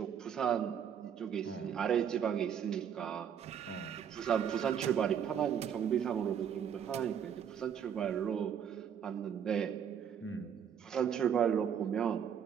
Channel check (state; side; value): quieter; left; 8.3 dB